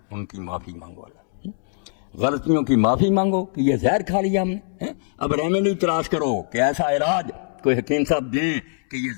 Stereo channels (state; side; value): silent; right; 64 dB below the other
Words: ان کی معافی مانگو، اللہ غلطیوں کی معافی مانگو کہ یہ زہر کھا لیا ہم نے، اب ریمیڈی تلاش کرو کہ ایسا علاج کوئی حکیم صاحب دے کہ یہ